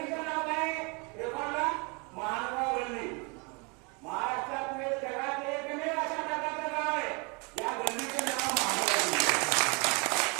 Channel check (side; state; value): left; quieter; 31.1 dB